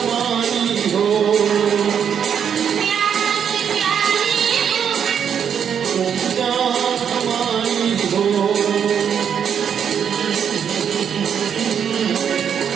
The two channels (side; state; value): left; quieter; 7.9 dB